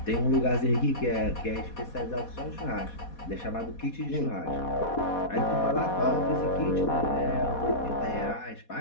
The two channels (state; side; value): late; right; 4.2 ms